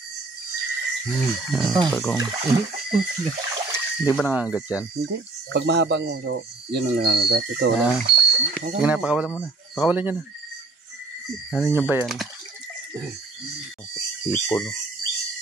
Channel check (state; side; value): quieter; left; 3.4 dB